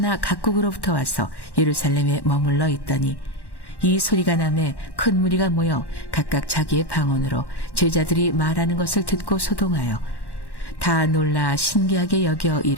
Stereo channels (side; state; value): right; late; 1.1 ms